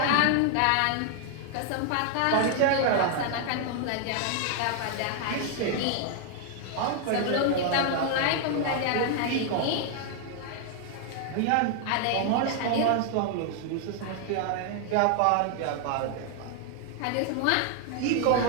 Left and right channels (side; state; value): both; different; correlation 0.00